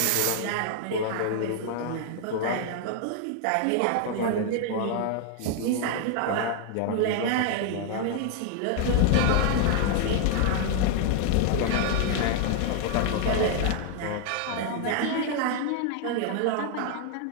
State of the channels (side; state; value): both; different; correlation 0.00